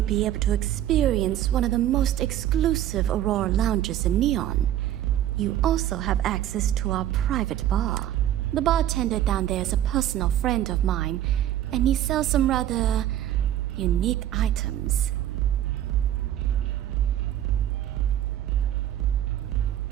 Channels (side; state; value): left; quieter; 12.1 dB